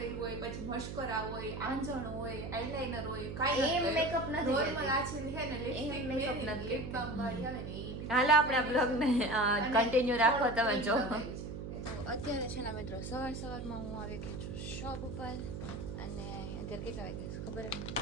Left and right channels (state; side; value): noise; right; hum, 7 dB below the sound